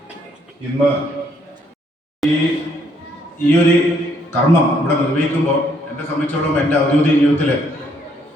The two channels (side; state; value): both; normal; correlation 0.69